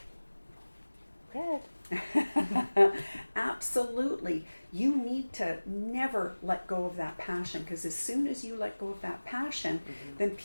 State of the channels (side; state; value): both; inverted; correlation -1.00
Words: Red. Absolutely. You need to never let go of that passion, because as soon as you let go of that passion, then